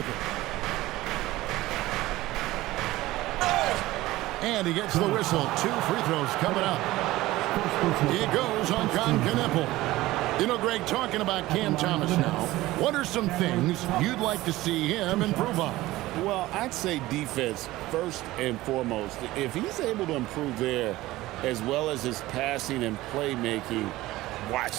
it. And he gets the whistle. 2 free throws coming up. He goes on Knipple. You know, Greg, talking about Cam Thomas now, what are some things you'd like to see him improve on? Well, I'd say defense first and foremost. If he's able to improve there as well as his passing and playmaking,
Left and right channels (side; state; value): left; quieter; 17.6 dB